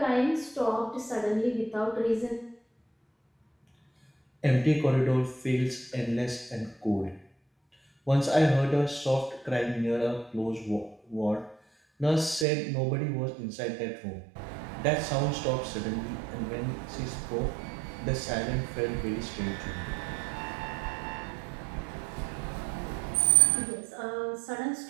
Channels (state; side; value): drops out; left; at 12.5 s